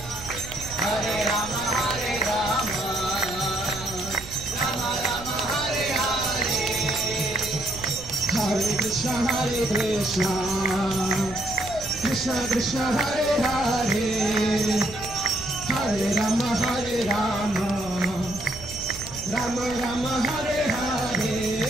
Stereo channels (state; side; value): noise; right; rumble, 14 dB below the sound